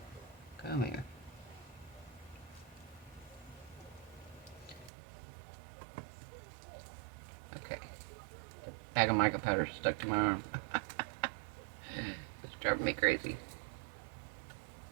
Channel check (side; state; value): left; drops out; at 4.9 s